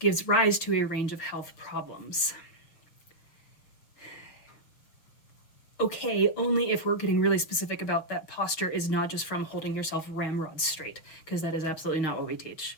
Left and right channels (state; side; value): late; right; 6.3 ms